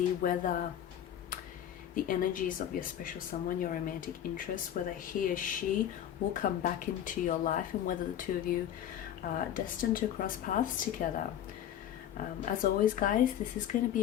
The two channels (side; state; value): right; quieter; 10.5 dB